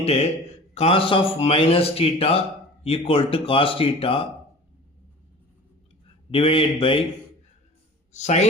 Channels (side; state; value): both; normal; correlation 0.41